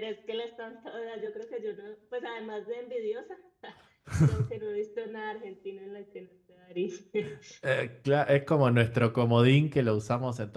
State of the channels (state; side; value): identical; both; correlation 1.00